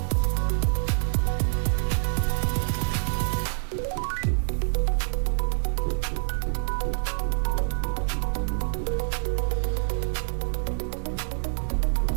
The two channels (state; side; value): silent; left; digital silence